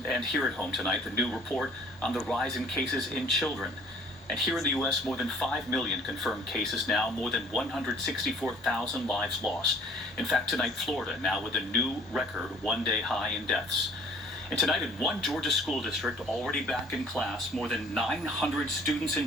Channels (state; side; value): normal; both; correlation 0.53